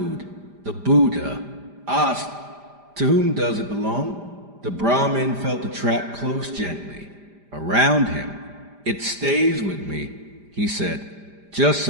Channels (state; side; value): late; left; 5.0 ms